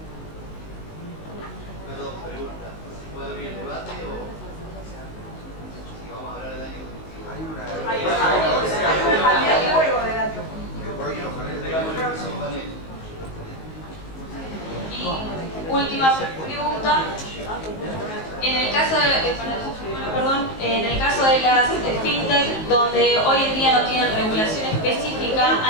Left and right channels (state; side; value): late; right; 19 ms